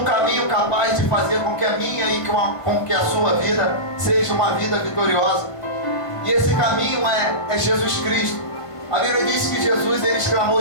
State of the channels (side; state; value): right; late; 1.5 ms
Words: caminho capaz de fazer com que a minha e com que a sua vida seja uma vida vitoriosa. E esse caminho é Jesus Cristo. A Bíblia diz que Jesus, ele